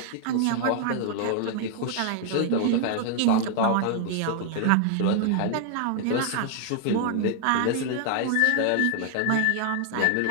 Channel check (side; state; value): both; different; correlation 0.00